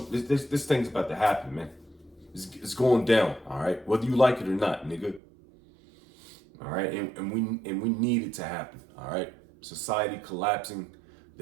This thing's about to happen, man. It's going down, all right? Whether you like it or not, nigga. All right, and we need it to happen. All right, society collapsing,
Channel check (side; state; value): left; drops out; at 5.2 s